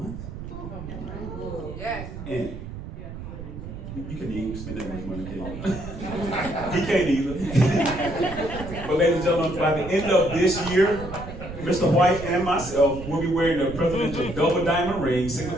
Yes. And you can even spend that much money, can't you? He can't either. But ladies and gentlemen, by the end of this year, Mr. White and myself will be wearing the presidential double diamond ring,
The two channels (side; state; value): right; noise; rumble, 10 dB below the sound